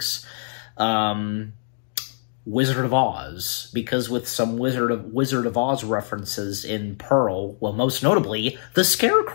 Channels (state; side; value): silent; right; digital silence